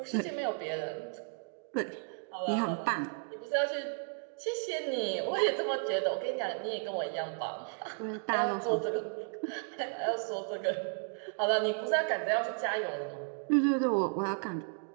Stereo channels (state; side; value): silent; left; 55 dB below the other